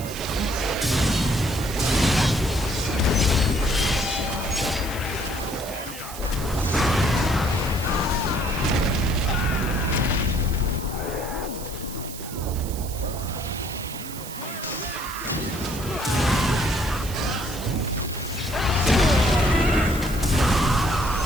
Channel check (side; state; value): right; noise; hiss, 12 dB below the sound